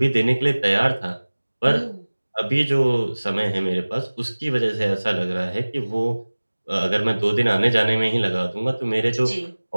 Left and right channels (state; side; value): inverted; both; correlation -1.00